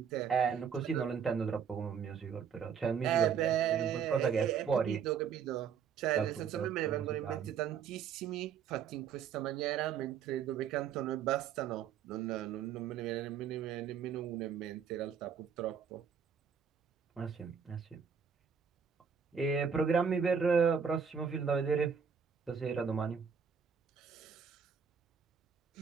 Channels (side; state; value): left; quieter; 7.1 dB